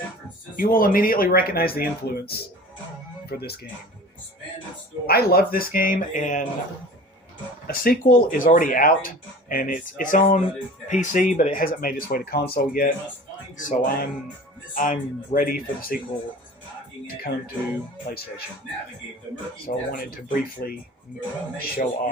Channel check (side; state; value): both; normal; correlation 0.41